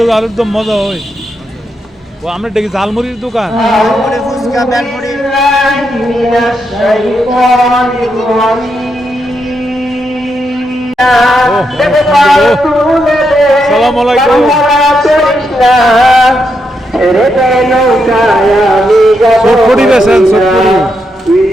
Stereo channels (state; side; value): normal; both; correlation 0.82